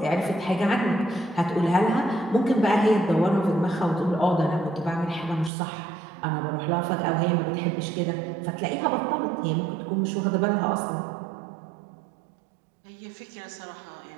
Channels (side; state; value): left; drops out; at 5.5 s